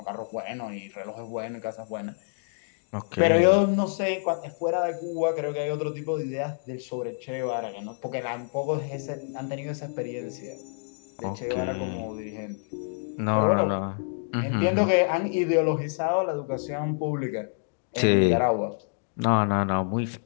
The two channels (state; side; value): silent; right; digital silence